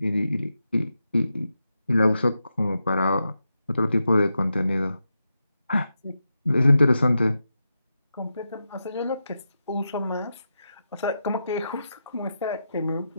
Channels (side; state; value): both; inverted; correlation -0.88